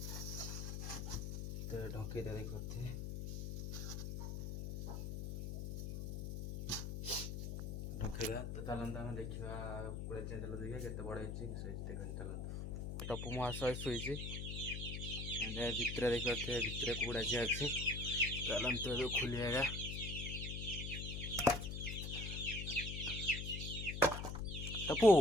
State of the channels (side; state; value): left; noise; hum, 4 dB below the sound